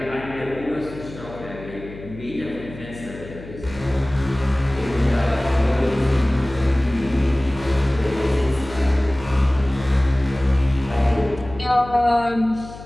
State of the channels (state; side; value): noise; left; hum, 15 dB below the sound